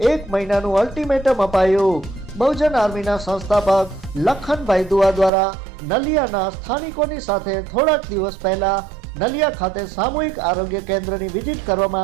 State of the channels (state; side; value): drops out; left; at 5.3 s